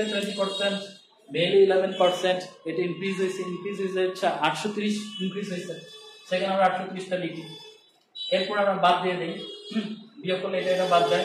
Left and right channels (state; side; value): identical; both; correlation 1.00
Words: 20%, মেলে 11%, এটা ইনক্রিজ হয়েছে। ইনক্রিজ হয়েছে 830 ইনক্রিজ হয়েছে, সেখানে আমরা 830টা লিখি। এরপর আমরা বাদ দিয়ে দিই, বিয়োগ করলে এটা বাদ